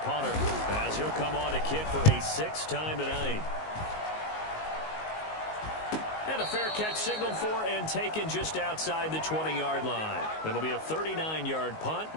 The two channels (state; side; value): late; right; 19 ms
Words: punter as he'll come on to kick for a 6th time tonight. And a fair catch signaled for and taken just outside the 20-yard line. It'll be a 39-yard punt,